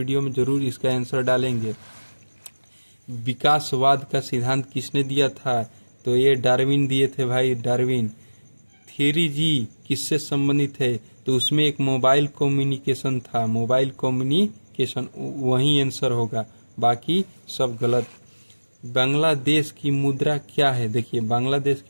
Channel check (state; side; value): inverted; both; correlation -1.00